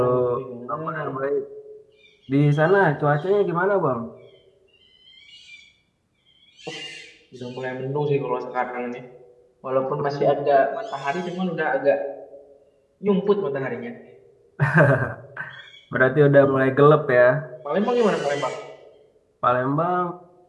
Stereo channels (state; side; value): identical; both; correlation 1.00